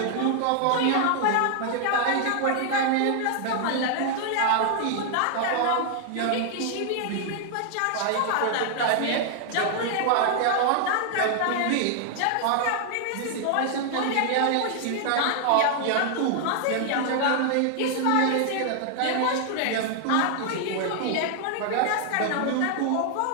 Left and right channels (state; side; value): different; both; correlation 0.00